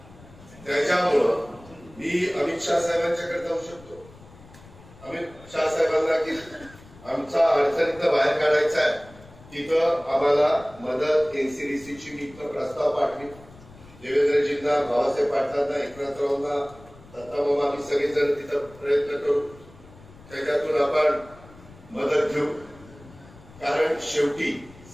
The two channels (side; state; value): left; noise; rumble, 22 dB below the sound